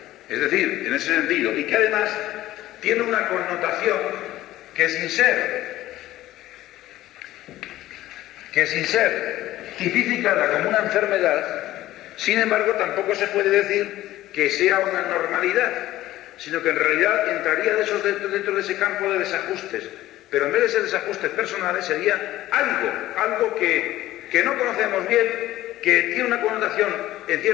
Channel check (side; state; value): right; quieter; 15.2 dB